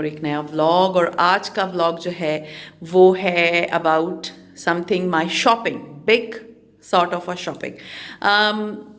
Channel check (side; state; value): both; identical; correlation 1.00